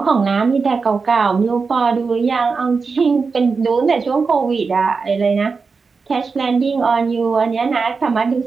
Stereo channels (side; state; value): left; quieter; 4.8 dB